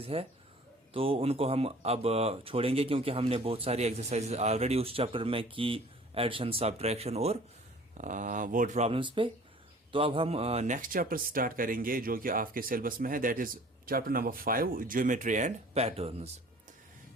है। तो उनको हम अब छोड़ेंगे क्योंकि हमने बहुत सारी एक्सरसाइज ऑलरेडी उस चैप्टर में की, एडिशन, सब्ट्रैक्शन और वर्ड प्रॉब्लम्स पे। तो अब हम नेक्स्ट चैप्टर स्टार्ट करेंगे जो कि आपके सिलेबस में है, that is chapter number 5, geometry and patterns.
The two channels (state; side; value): normal; both; correlation 0.49